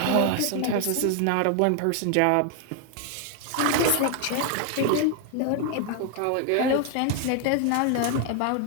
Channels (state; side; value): different; both; correlation 0.00